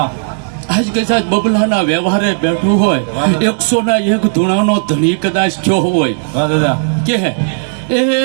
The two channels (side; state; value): left; silent; digital silence